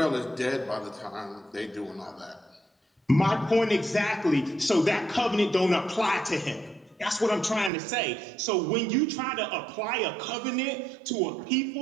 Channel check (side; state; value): left; drops out; at 7.7 s